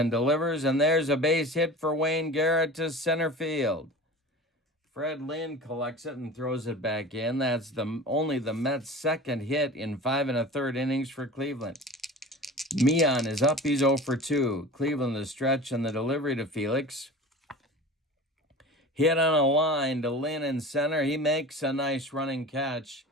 delivers, and there's a base hit for Wayne Garrett to center field. Fred Lynn collects it and throws it back in. That's only the Mets' second hit in 5 1/3 innings for Cleveland. Meehan is up. He's 0 for 2. Cleveland the stretch and the delivery to Felix. Hit on a line to Lynn in center. He makes a nice running catch.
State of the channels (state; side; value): normal; both; correlation 0.36